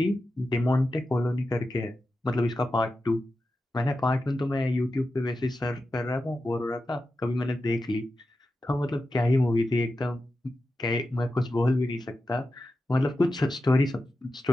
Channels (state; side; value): normal; both; correlation 0.91